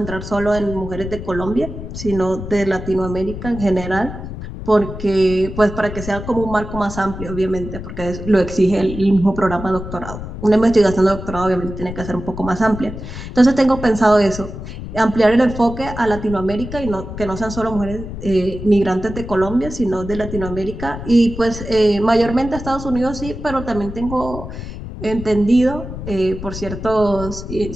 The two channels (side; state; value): left; noise; rumble, 9 dB below the sound